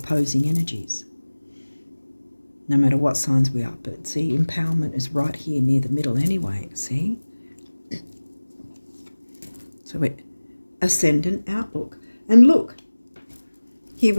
energies, no matter what signs we are. But see, empowerment is right here near the middle anyway, see? So ascendant outlook. And look, here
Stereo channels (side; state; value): both; inverted; correlation -1.00